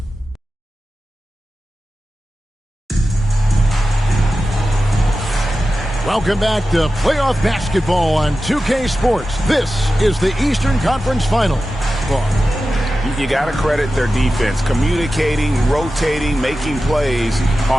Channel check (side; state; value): both; normal; correlation 0.94